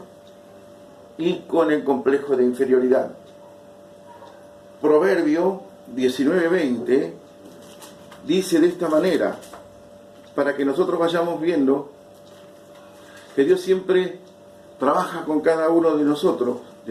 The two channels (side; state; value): both; identical; correlation 1.00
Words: y con el complejo de inferioridad. Proverbio 19:20 dice de esta manera: para que nosotros vayamos viendo que Dios siempre trabaja con cada uno de nosotros